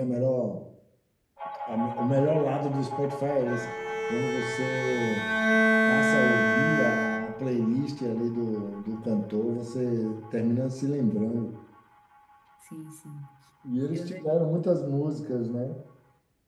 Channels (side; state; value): both; identical; correlation 1.00